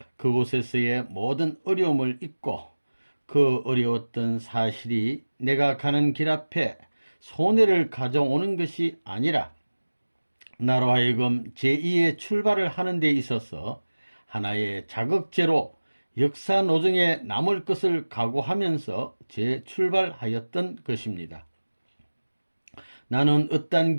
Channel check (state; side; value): inverted; both; correlation -1.00